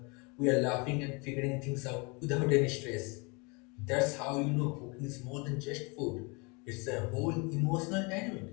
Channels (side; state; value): right; quieter; 29.9 dB